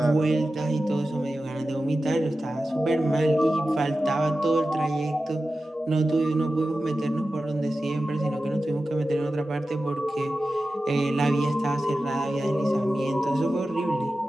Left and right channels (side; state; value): both; normal; correlation 0.93